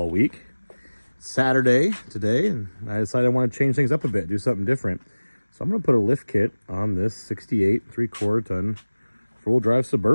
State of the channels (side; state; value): both; inverted; correlation -1.00